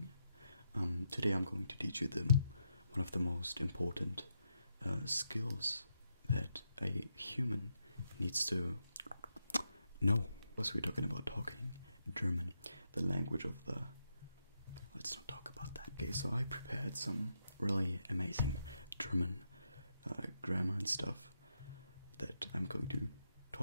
Today I'm going to teach you one of the most important skills that a human needs to know. Because we're talking about talking German, the language of the... Let's not talk about that. Okay, so I prepared some really amazing German grammar and stuff that I'm going to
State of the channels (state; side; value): inverted; both; correlation -0.82